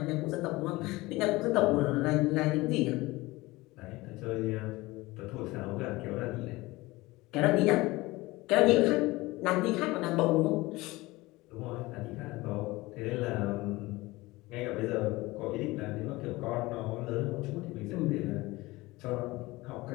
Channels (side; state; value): right; quieter; 20.7 dB